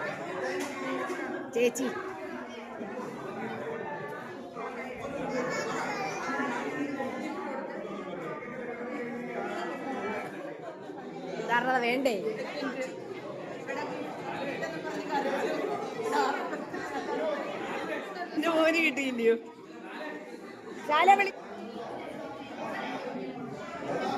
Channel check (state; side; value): identical; both; correlation 1.00